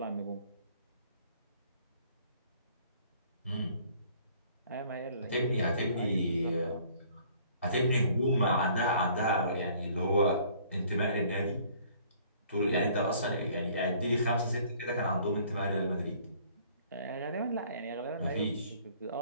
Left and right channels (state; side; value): inverted; both; correlation -0.57